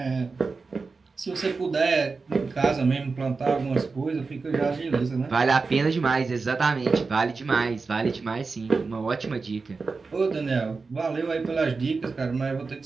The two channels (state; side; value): quieter; left; 4.3 dB